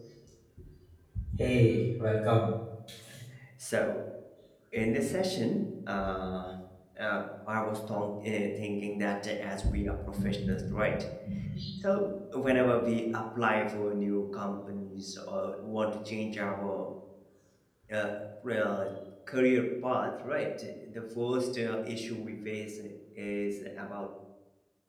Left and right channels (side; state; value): both; identical; correlation 1.00